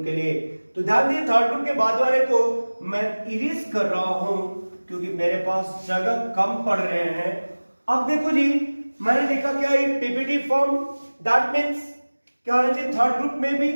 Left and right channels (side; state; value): both; inverted; correlation -1.00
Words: के लिए। तो ध्यान दिए, थर्ड ग्रुप के बाद वाले को मैं इरेज कर रहा हूं क्योंकि मेरे पास जगह कम पड़ रहे हैं। अब देखो जी, मैंने लिखा क्या, ये पीपीटी फॉर्म, दैट मींस क्या होना चाहिए, थर्ड ग्रुप में भी।